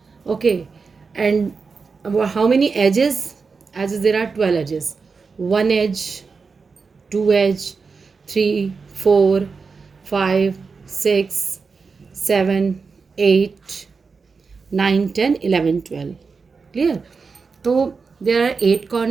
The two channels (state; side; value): quieter; left; 4.9 dB